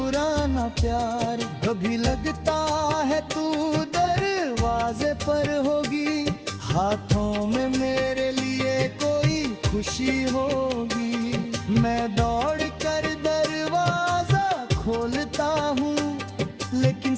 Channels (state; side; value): identical; both; correlation 1.00